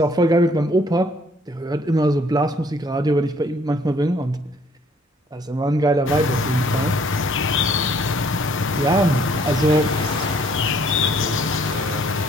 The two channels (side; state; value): both; normal; correlation 0.62